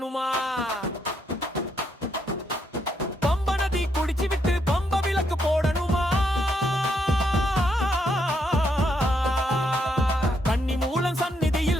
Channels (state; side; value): normal; both; correlation 0.76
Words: பம்ப நதி குடிச்சு விட்டு பம்ப விளக்கு போடணுமா? கன்னி மூலம்